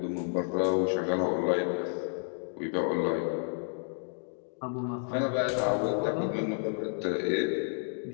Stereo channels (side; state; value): right; silent; 57 dB below the other